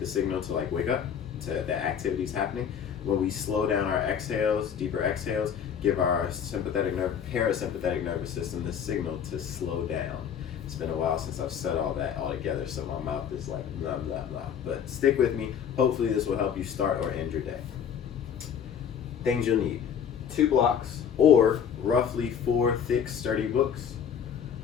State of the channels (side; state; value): right; quieter; 8.0 dB